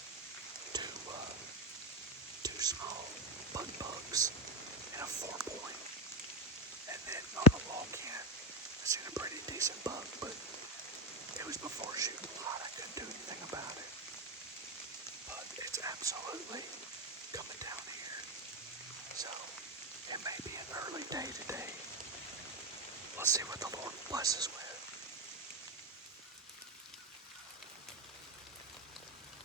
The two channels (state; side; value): normal; both; correlation 0.14